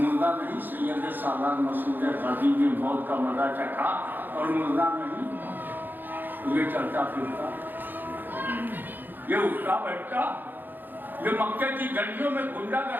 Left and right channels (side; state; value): left; late; 0.090 ms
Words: نہیں سید سالار مسعود غازی نے موت کا مزہ چکھا اور مردہ نہیں یہ چلتا پھرتا، یہ اٹھتا بیٹھتا، یہ مکے کی گلیوں میں گنڈا